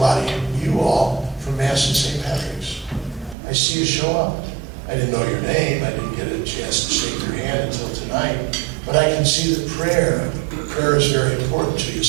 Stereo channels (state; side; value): drops out; left; at 3.4 s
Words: of you all from Mass and St. Patrick's. I see you show up. I didn't know your name. I didn't get a chance to shake your hand until tonight. But I can see that prayer is very important to you.